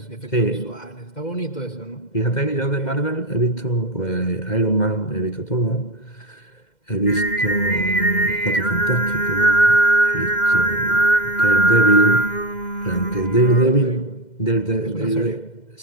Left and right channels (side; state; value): right; late; 2.1 ms